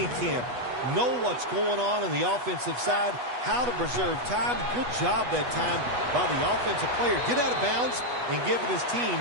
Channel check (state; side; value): late; left; 8.2 ms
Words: camp. Know what's going on the offensive side, how to preserve time. Good job that time by the offensive player. Get out of bounds and giving his team